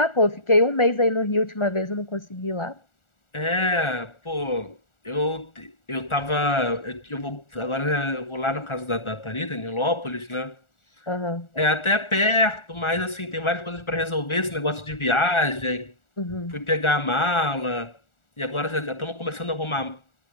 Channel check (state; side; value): late; right; 1.4 ms